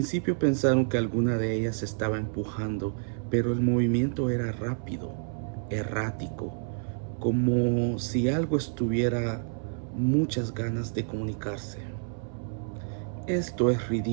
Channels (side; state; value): left; silent; 59 dB below the other